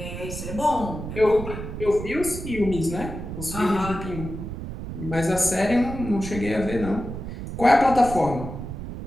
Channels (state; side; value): noise; right; rumble, 8 dB below the sound